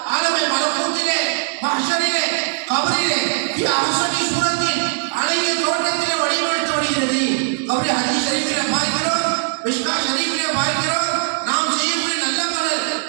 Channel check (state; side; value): silent; left; digital silence